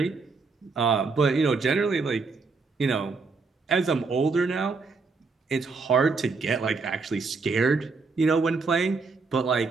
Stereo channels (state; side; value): quieter; left; 4.3 dB